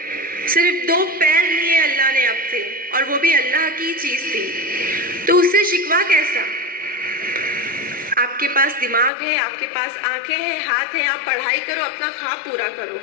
सिर्फ 2 पैर लिए अल्लाह ने आपसे, और वो भी अल्लाह की चीज़ थी, तो उससे शिकवा कैसा। आपके पास दिमाग है, आपके पास आंखें हैं, हाथ हैं, आप पढ़ाई करो, अपना ख्वाब पूरा करो।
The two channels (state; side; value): drops out; right; at 9.1 s